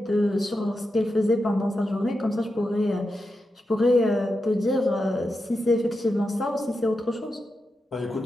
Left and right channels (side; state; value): both; normal; correlation 0.88